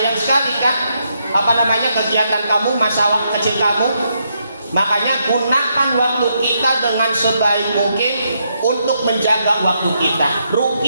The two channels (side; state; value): both; inverted; correlation -0.78